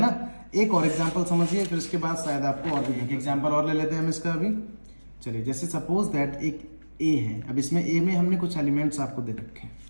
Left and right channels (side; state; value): both; inverted; correlation -1.00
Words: ना। एक और एग्जांपल समझिए, फिर उसके बाद शायद आपको और भी एक एग्जांपल और ले लेते हैं हम इसका अभी। चलिए, जैसे सपोज दैट एक ए है, अब इसमें ए में हमने कुछ एलिमेंट्स आपको दे रखे हैं,